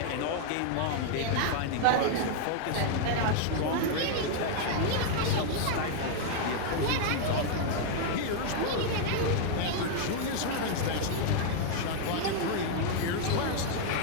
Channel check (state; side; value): different; both; correlation -0.01